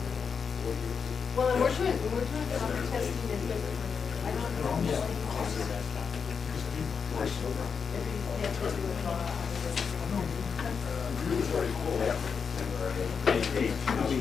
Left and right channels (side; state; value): right; quieter; 6.1 dB